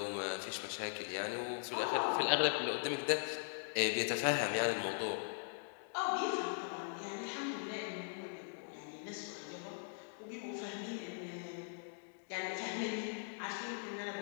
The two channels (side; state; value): right; silent; digital silence